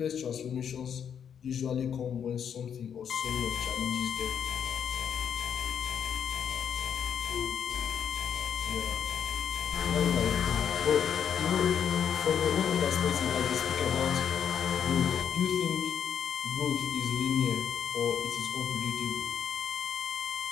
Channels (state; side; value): quieter; right; 8.1 dB